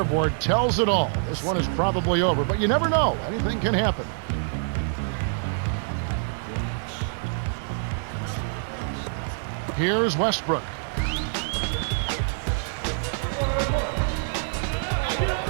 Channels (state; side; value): silent; left; digital silence